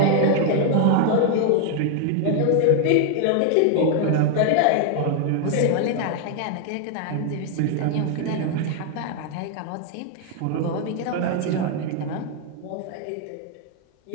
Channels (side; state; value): both; different; correlation 0.00